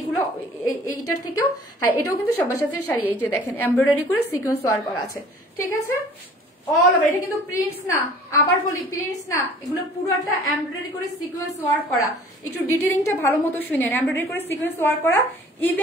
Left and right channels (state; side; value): normal; both; correlation 0.50